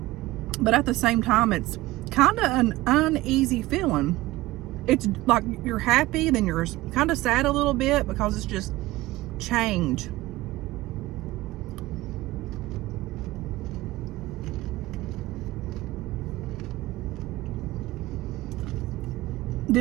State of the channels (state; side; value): quieter; left; 18.2 dB